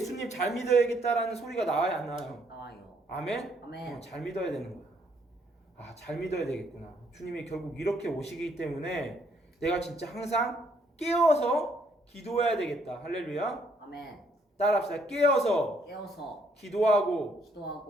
잘 믿어야겠다라는 소리가 나와요 안 나와요? 나와요. 아멘? 아멘. 잘 믿어야 되는 거야. 아 잘 믿어야 되겠구나. 주님이 결국 이렇게 오시기 때문에 내가 진짜 항상 깨어서 기도해야 되겠다. 할렐루야. 아멘. 따라합시다. 깨어서 기도하고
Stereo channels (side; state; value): both; normal; correlation 0.68